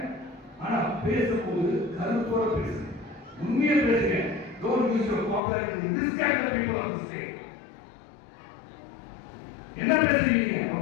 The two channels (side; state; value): right; drops out; at 5.4 s